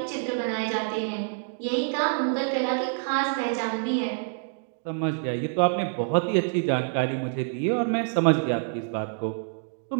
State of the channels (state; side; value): silent; left; 60 dB below the other